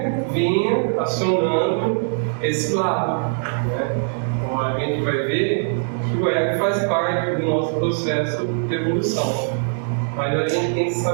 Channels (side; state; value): left; silent; 65 dB below the other